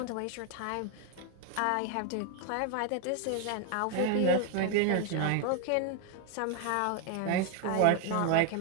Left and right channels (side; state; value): both; different; correlation 0.00